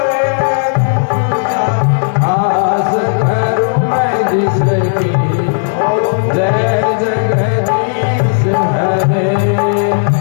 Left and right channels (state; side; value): silent; right; digital silence